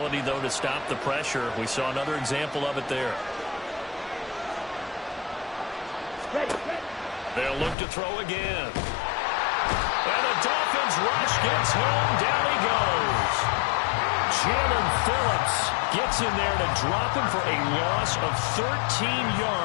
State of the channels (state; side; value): drops out; right; at 7.8 s